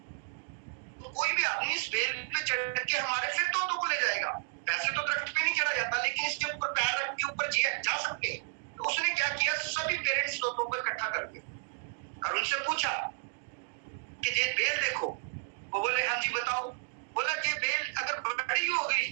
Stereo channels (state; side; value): silent; left; digital silence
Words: तो कोई भी आदमी इस बेल पे चढ़ के हमारे फिर तोतों को ले जाएगा। वैसे तो दरख्त पे नहीं चढ़ा जाता, लेकिन इसके ऊपर पैर रख के ऊपर जा सकते हैं। तो उसने क्या किया, सभी पेरेंट्स तोतों को इकट्ठा कर दिया और उनसे पूछा कि ये बेल देखो। वो बोले हाँ जी बताओ। बोला ये बेल अगर बड़ी हो गई